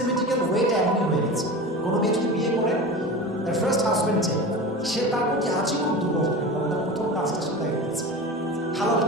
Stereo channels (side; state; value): both; normal; correlation 0.30